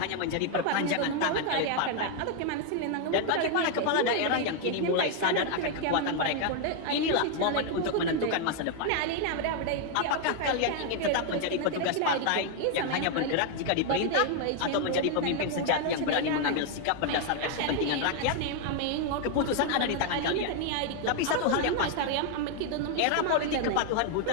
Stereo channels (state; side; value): different; both; correlation 0.00